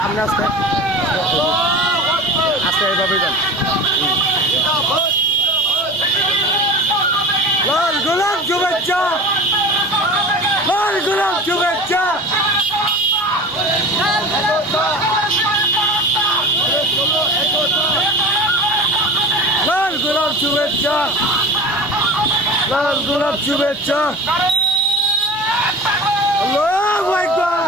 আস্তে এইভাবে যান লাল গোলাপ শুভেচ্ছা লাল গোলাপ শুভেচ্ছা লাল গোলাপ শুভেচ্ছা লাল গোলাপ শুভেচ্ছা আল্লাহু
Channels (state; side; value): noise; right; hum, 26 dB below the sound